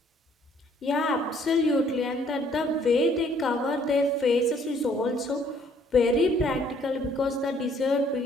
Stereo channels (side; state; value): both; normal; correlation 0.62